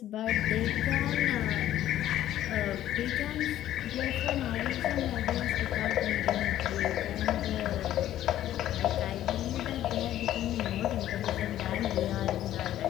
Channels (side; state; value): right; quieter; 12.7 dB